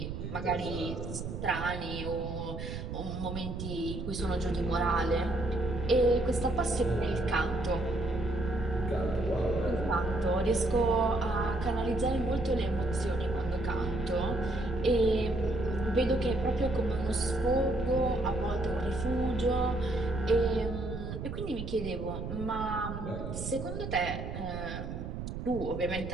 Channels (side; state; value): right; noise; rumble, 6 dB below the sound